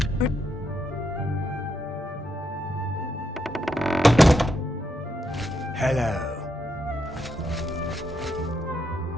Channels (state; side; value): normal; both; correlation 0.80